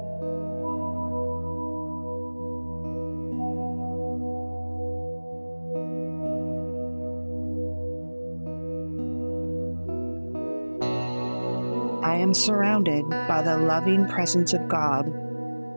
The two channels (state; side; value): inverted; both; correlation -1.00